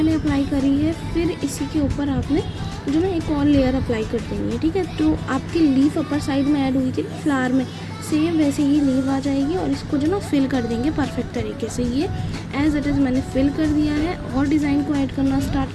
अप्लाई करी है, फिर इसी के ऊपर आपने जो ना एक और लेयर अप्लाई कर देनी है। ठीक है, तो आपकी लीफ अपर साइड में ऐड हुई थी फ्लावर में, सेम वैसे ही लीव आ जाएगी, और इसको जो ना फिल कर देंगे परफेक्ट तरीके से। ये एज इट इज़ मैंने फिल कर दिया है, और डिज़ाइन को ऐड करना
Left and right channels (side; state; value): both; identical; correlation 1.00